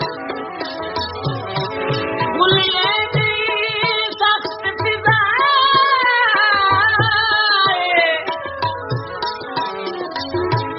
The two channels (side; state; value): both; identical; correlation 1.00